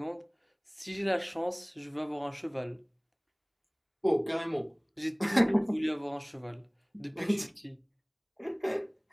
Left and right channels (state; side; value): identical; both; correlation 1.00